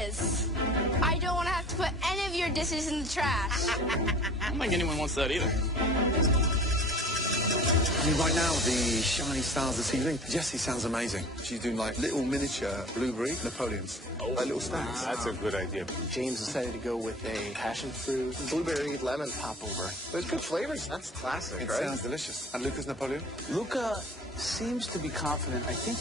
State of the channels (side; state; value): both; normal; correlation 0.45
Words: I don't want to have to put any of your dishes in the trash. I don't think anyone wants that either. I mean, right now, the shiny stars of the ceiling. Jessie sounds amazing. She's doing like little miniature blueberry Napoleons. Like little stars. That's a good idea. James decided to go with a passion fruit, blueberry, lemon popover. There's good flavors. That's classic, It right? sounds delicious. And Lucas Napoleon? Luca seems to be confident. I think